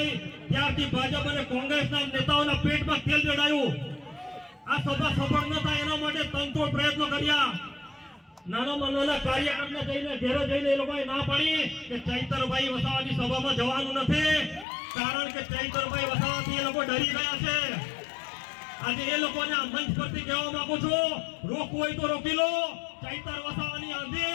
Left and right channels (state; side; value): drops out; right; at 14.7 s